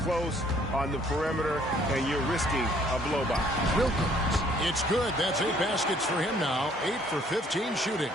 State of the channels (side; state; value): both; normal; correlation 0.61